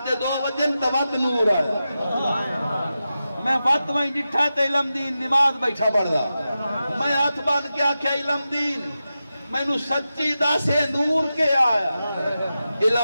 دے 2 بجے توت نور آیا میں وقت وہیں جٹھا تے علم دین نماز بیٹھا پڑھ دا میں ہاتھ بان کے آکھیا علم دین میں نو سچی دا سے نور کے آیا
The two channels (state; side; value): inverted; both; correlation -0.92